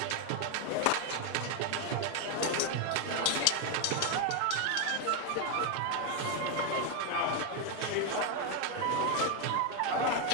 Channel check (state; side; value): different; both; correlation 0.01